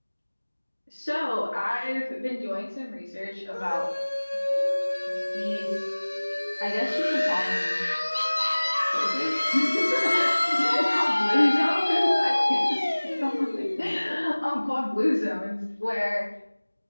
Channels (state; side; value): inverted; both; correlation -1.00